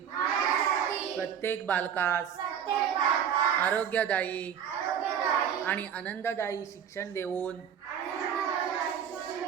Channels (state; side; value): quieter; left; 8.5 dB